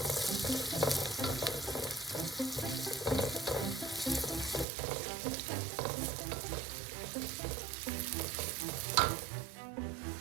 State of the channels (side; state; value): left; drops out; at 4.7 s